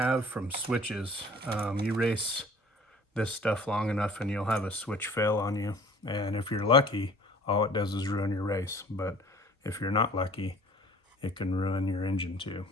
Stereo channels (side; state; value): both; normal; correlation 0.49